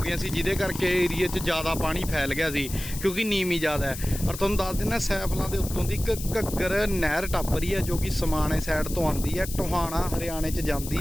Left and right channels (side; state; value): left; noise; hiss, 10 dB below the sound